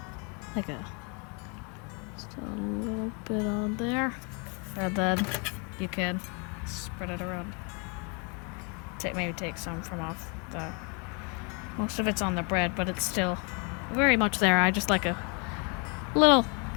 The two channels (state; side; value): quieter; right; 34.4 dB